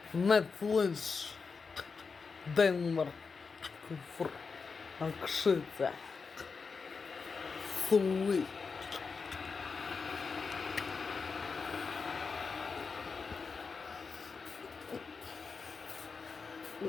Netflix, Denmark, Akszyca, Sweet.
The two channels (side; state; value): right; quieter; 5.0 dB